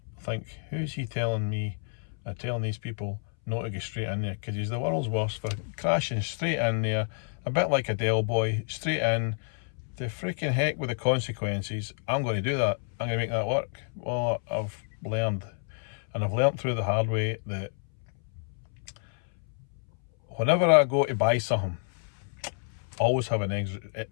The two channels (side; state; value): right; silent; 59 dB below the other